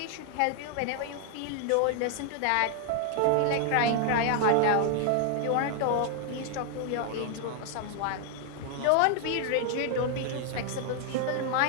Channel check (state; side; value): different; both; correlation 0.00